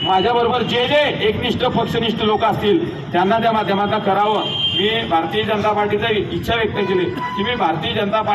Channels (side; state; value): both; identical; correlation 1.00